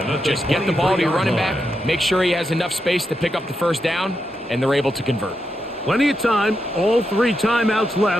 just get the ball to your running back, make sure he has enough space to pick up the first down, and they're able to convert. Plenty of time, all 3 timeouts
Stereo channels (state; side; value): normal; both; correlation 0.85